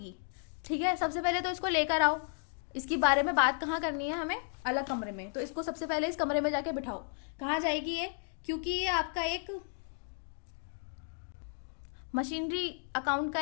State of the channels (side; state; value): right; silent; 55 dB below the other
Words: ठीक है, सबसे पहले तो इसको लेकर आओ। इसके बारे में बात कहाँ करनी है हमें, अलग कमरे में। तो इसको सबसे पहले इस कमरे में जाके बिठाओ। कहाँ जाएगी ये, क्योंकि ये आपका एक मशीनरी अकाउंट का